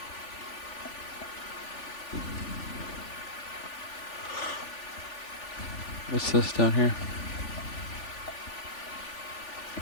What's this down here?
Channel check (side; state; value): right; late; 3.4 ms